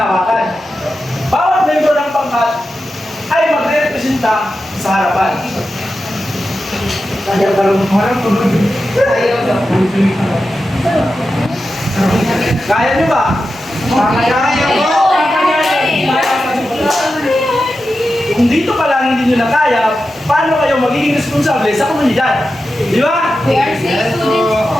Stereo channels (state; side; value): normal; both; correlation 0.91